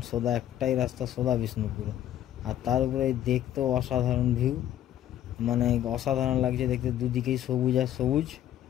সোজা একটাই রাস্তা, সোজা বিষ্ণুপুর। আর তার উপরে দেখতেও অসাধারণ ভিউ, মানে অসাধারণ লাগছে দেখতে, দুদিকেই সবুজ আর সবুজ,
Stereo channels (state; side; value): quieter; right; 11.7 dB